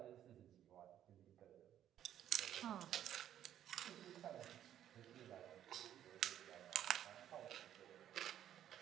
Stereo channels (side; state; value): left; quieter; 10.9 dB